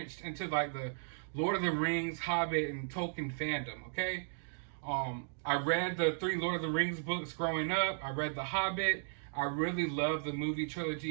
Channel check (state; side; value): silent; left; digital silence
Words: into, like, the Lord of the Rings, Hobbit, and Tolkien fandom, okay? I read the 3 Lord of the Rings books growing up. I read The Hobbit. I really love the movie